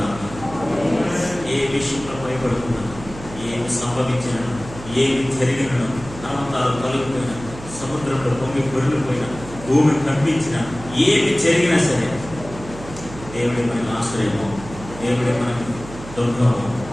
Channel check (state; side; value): noise; right; hum, 14 dB below the sound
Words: ఏ విషయంలో భయపడుతున్నా, ఏమి సంభవించినా, ఏమి జరిగినా, నమ్మకాలు తొలగిపోయినా, సముద్రంలో పొంగి పొరిగిపోయినా, భూమి కంపించినా, ఏమి జరిగినా సరే దేవుడి మనకు ఆశ్రయము, దేవుడి మనకు దుర్గము,